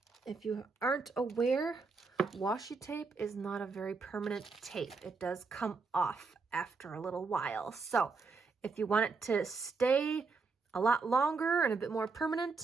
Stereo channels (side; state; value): left; quieter; 4.4 dB